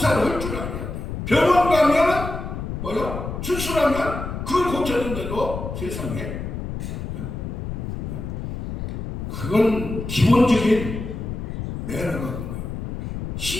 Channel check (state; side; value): noise; left; rumble, 5 dB below the sound